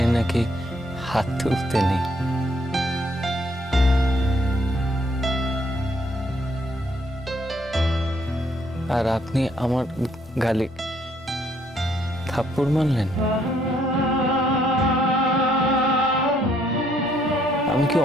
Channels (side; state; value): both; normal; correlation 0.69